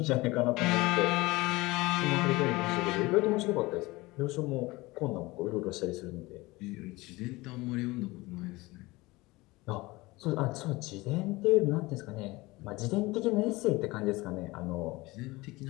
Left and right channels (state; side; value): quieter; right; 21.5 dB